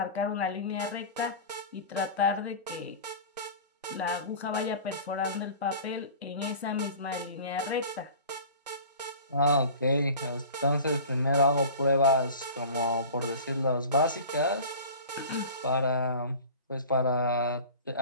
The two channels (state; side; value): inverted; both; correlation -0.39